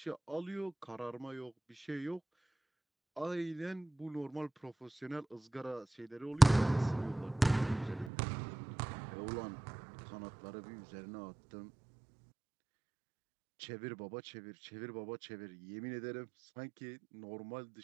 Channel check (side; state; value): left; drops out; at 8.1 s